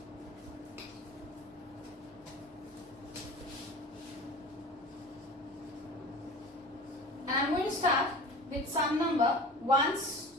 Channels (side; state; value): both; normal; correlation 0.37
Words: And I'm going to start with sum number 1s